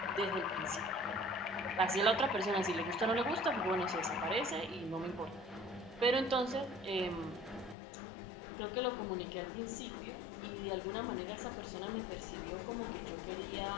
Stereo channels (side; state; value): right; drops out; at 7.8 s